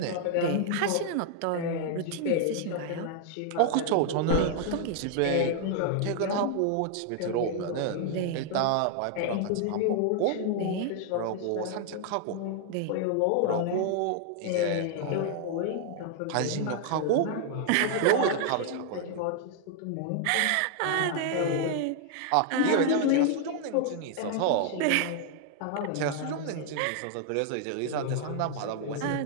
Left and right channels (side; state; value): both; different; correlation 0.00